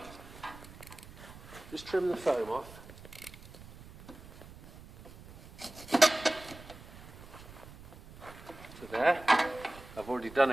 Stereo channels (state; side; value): noise; right; rumble, 17 dB below the sound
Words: Just trim the foam off. To there. I've already done